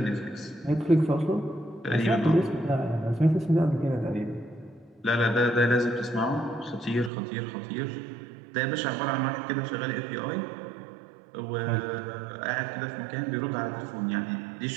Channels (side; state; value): left; drops out; at 7.1 s